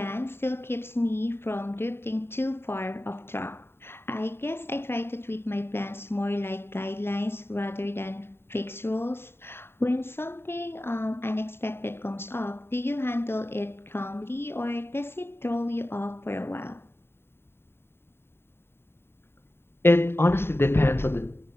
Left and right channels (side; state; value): right; late; 0.11 ms